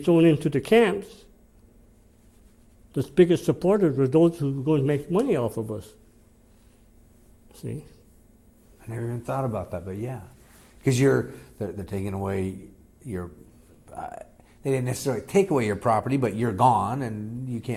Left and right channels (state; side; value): identical; both; correlation 1.00